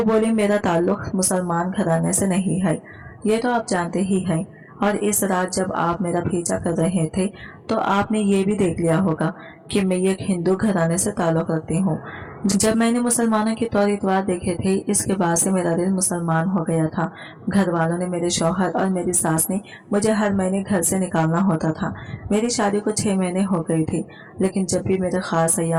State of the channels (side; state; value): both; identical; correlation 1.00